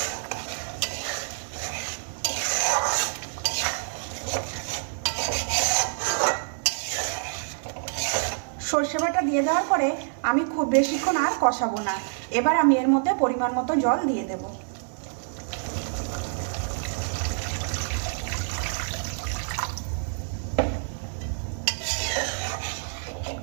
সর্ষে বাটা দিয়ে দেওয়ার পরে আমি খুব বেশিক্ষণ আর কষাবো না। এবার আমি এর মধ্যে পরিমাণ মতো জল দিয়ে দেব।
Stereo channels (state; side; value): silent; left; digital silence